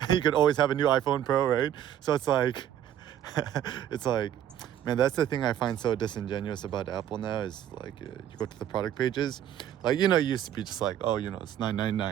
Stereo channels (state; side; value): quieter; left; 10.5 dB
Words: you could always have a new iPhone Pro, right? So it's like, man, that's the thing I find so disingenuous about Apple now is like, you go to the product pages, like, it used to be just like, oh, it's